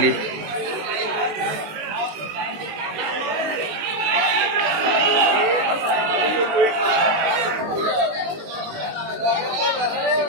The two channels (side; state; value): left; late; 19 ms